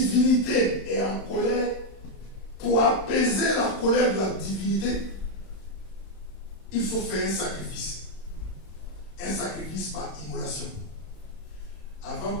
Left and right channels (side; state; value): right; late; 31 ms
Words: est en colère, pour apaiser la colère de la divinité, il faut faire un sacrifice. Un sacrifice par immolation. Avant